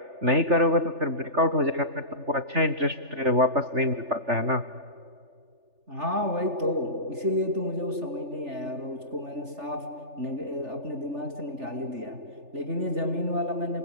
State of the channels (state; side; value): late; left; 3.4 ms